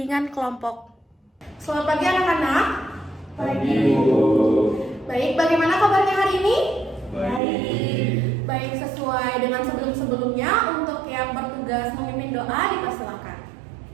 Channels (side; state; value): left; drops out; at 7.4 s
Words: kelompok. Selamat pagi anak-anak. Pagi, Bu. Baik, bagaimana kabarnya hari ini? Baik. Baik, sesuai dengan sebelum-sebelumnya, untuk yang bertugas memimpin doa dipersilakan.